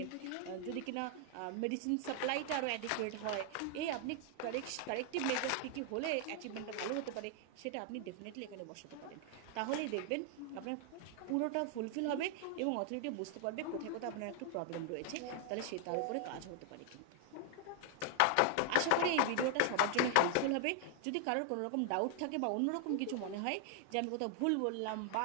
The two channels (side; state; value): both; different; correlation 0.00